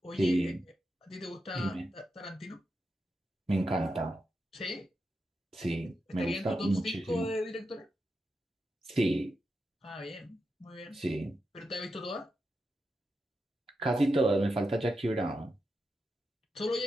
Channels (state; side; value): normal; both; correlation 0.88